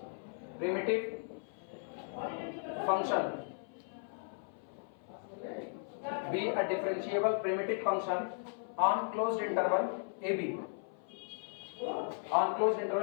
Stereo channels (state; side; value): silent; right; 54 dB below the other